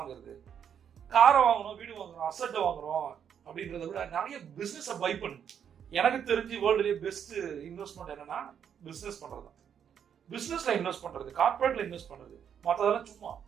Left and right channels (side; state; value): left; quieter; 8.3 dB